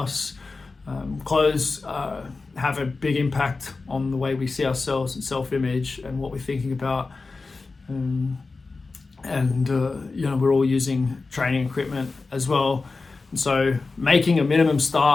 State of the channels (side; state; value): right; quieter; 3.9 dB